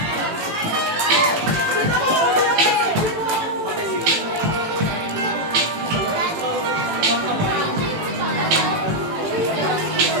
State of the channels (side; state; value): left; late; 18 ms